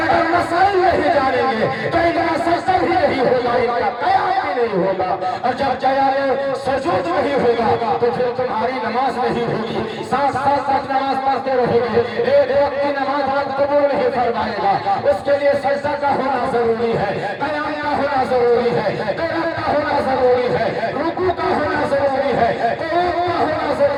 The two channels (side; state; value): both; identical; correlation 1.00